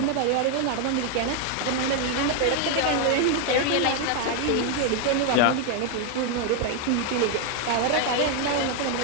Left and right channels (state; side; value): different; both; correlation 0.01